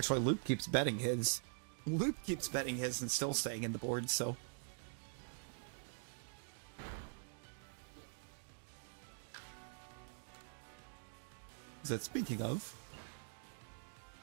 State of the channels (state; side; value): silent; left; digital silence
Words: Loop keeps betting his. Loop keeps betting his and still staying in the board, so. Is that speaking of?